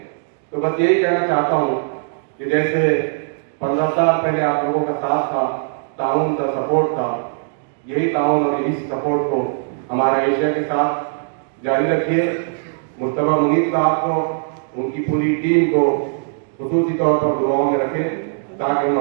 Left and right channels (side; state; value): left; silent; digital silence